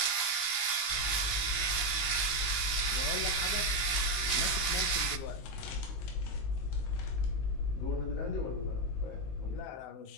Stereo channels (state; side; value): late; right; 19 ms